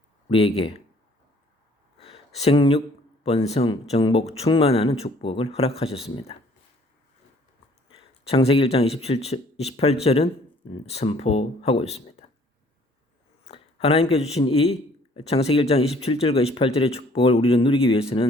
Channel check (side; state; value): both; normal; correlation 0.58